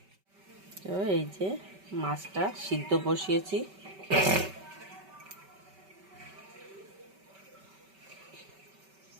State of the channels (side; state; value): left; late; 5.2 ms